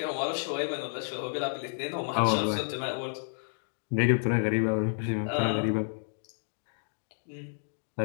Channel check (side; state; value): right; silent; digital silence